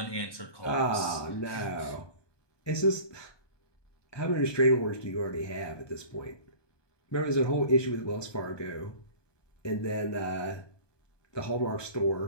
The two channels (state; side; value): late; right; 1.2 ms